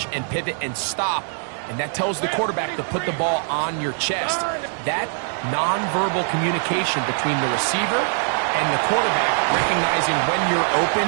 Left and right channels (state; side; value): silent; left; 64 dB below the other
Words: and pivot and stop. And that tells the quarterback to put the ball on your chest. That nonverbal communication between the receiver and the quarterback, recognizing when you're open,